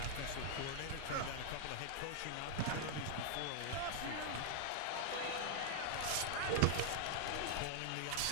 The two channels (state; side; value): different; both; correlation 0.00